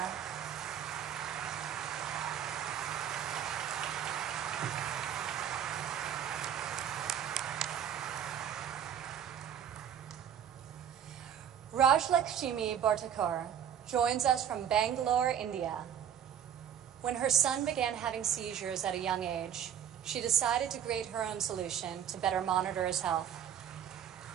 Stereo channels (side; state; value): left; quieter; 9.2 dB